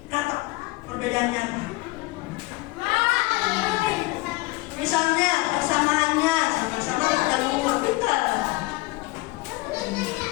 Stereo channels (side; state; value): right; quieter; 21.8 dB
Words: katak. Perbedaannya apa? Misalnya persamaannya sama-sama bertelur, betul.